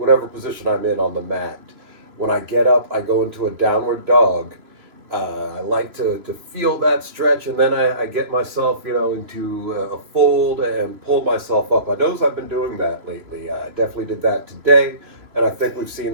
position I'm in on the mat, when I get up, I go into a downward dog, I like to feel that stretch, and then I get myself, into a fold and pull myself up. I notice I've been doing that lately. I definitely did that today, and I think we've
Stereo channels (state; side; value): late; left; 3.0 ms